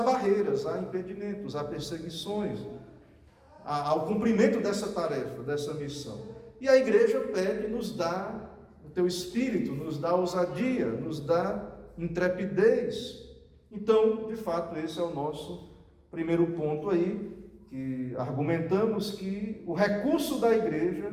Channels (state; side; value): identical; both; correlation 1.00